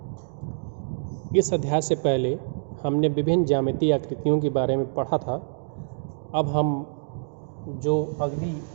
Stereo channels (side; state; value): left; silent; digital silence